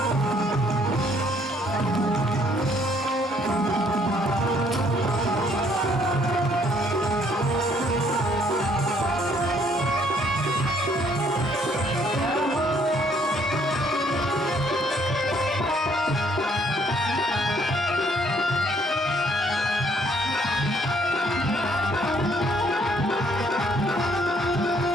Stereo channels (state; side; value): normal; both; correlation 0.65